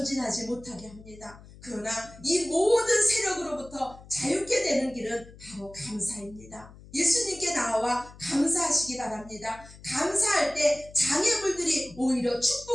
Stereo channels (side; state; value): left; noise; hum, 20 dB below the sound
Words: 못하게 합니다. 그러나 이 모든 세력으로부터 자유케 되는 길은 바로 감사입니다. 예수님께 나와 감사하시기 바랍니다. 감사할 때 장애물들이 오히려